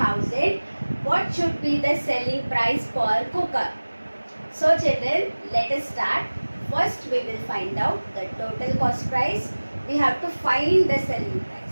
what should be the selling price per cooker? So children, let us start. First we will find out the total cost price. We have to find the selling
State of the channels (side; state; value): both; inverted; correlation -1.00